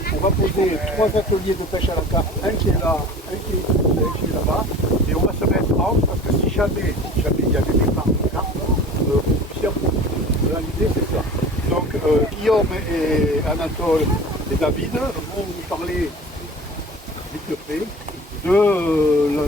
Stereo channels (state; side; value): normal; both; correlation 0.40